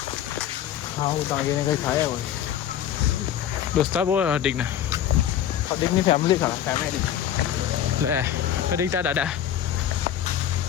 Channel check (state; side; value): quieter; right; 10.4 dB